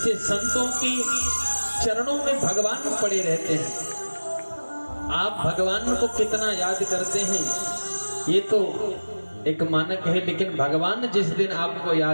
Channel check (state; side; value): inverted; both; correlation -1.00